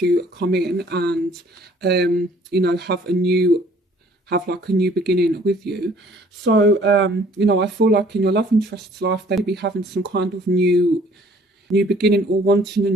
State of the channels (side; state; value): both; normal; correlation 0.57